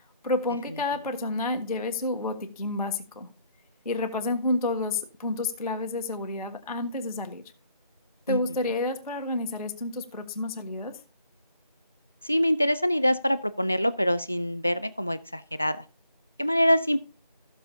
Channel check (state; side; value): inverted; both; correlation -0.70